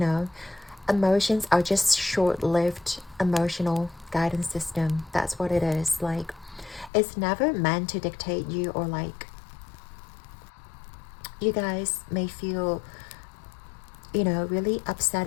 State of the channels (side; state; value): right; drops out; at 6.9 s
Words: emotions are just short-lived emotional guidance system. That's what it is. Like, it's never meant to dictate you, or like you guys may feel, you know, really upset